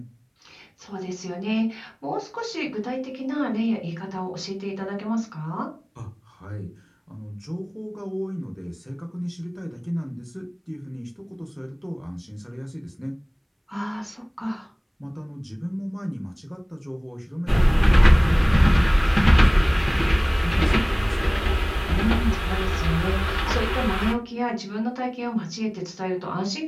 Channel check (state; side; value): identical; both; correlation 1.00